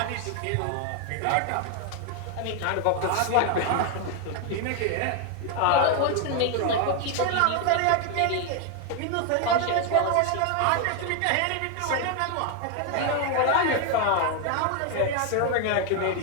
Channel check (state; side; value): different; both; correlation 0.00